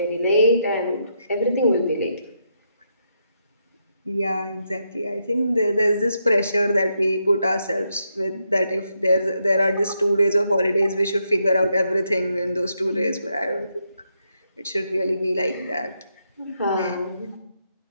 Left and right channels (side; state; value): both; inverted; correlation -0.80